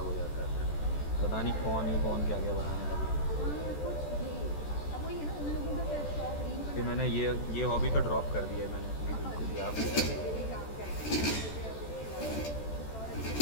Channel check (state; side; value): late; right; 14 ms